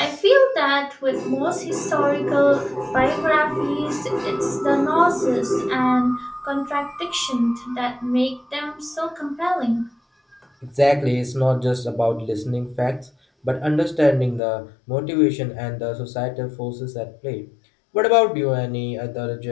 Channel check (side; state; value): right; drops out; at 14.4 s